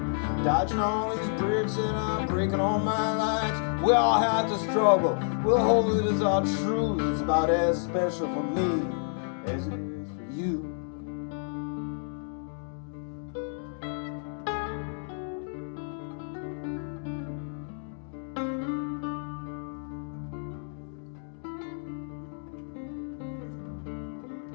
dodging all these bricks that are breaking all my lights. We all have to struggle, we'll hold it as our truth. It's about as special for me as it is for you.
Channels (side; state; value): right; silent; digital silence